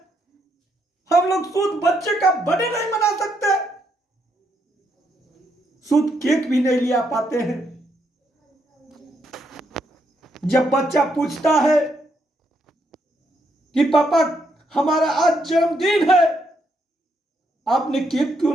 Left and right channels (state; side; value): normal; both; correlation 0.76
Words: हम लोग शुद्ध बच्चे का बर्थडे नहीं मना सकते, शुद्ध केक भी नहीं लिया पाते हैं। जब बच्चा पूछता है कि पापा हमारा आज जन्मदिन है, आपने केक क्यों